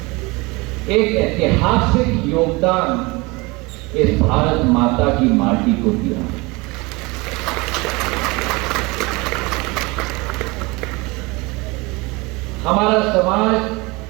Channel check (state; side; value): quieter; left; 24.8 dB